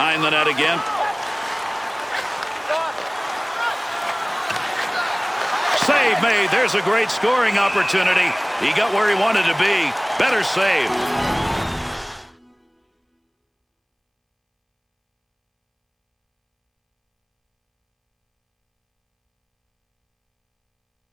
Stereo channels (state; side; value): identical; both; correlation 1.00